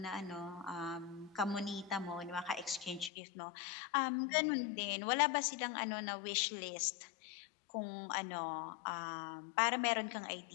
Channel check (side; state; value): right; drops out; at 3.1 s